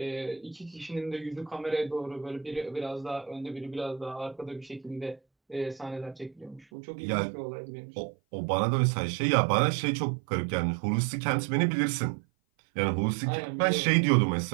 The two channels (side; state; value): left; drops out; at 6.7 s